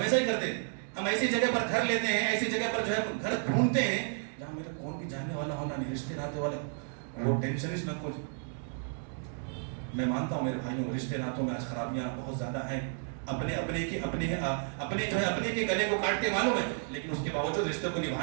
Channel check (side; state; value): left; silent; 56 dB below the other